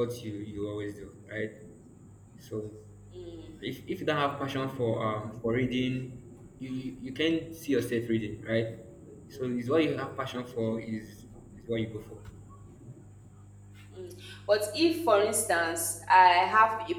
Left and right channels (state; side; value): identical; both; correlation 1.00